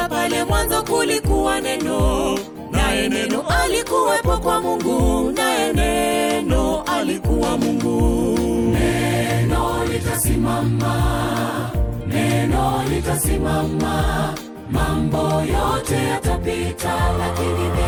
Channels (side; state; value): both; identical; correlation 1.00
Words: pale mwanzo kulikuwa neno, naye neno alikuwepo kwa Mungu, naye neno alikuwa Mungu. Neno litasimama, neno litasimama. Mambo yote yatapita, lakini